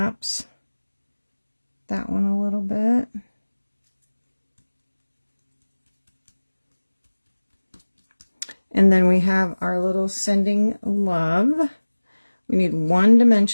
that one a little bit. And then we have our little sending love. We need one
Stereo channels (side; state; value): both; inverted; correlation -1.00